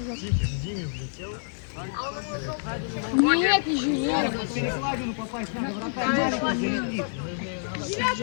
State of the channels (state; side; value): silent; right; digital silence